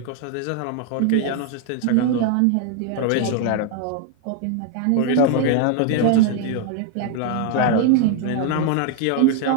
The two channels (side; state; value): both; different; correlation 0.01